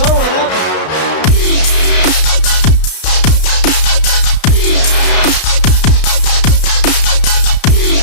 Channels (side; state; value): right; late; 32 ms